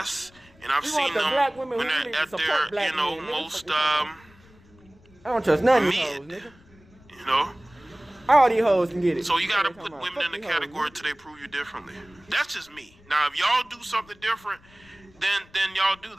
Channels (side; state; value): left; noise; rumble, 27 dB below the sound